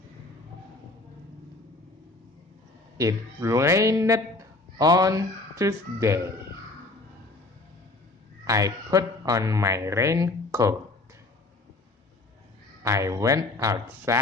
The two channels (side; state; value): right; quieter; 3.0 dB